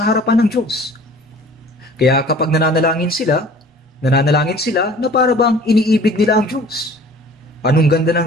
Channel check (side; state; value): both; normal; correlation 0.48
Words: harapan ng Diyos. Kaya kapag nananalangin sila na para bang iniibig nila ang Diyos. Anong ganda ng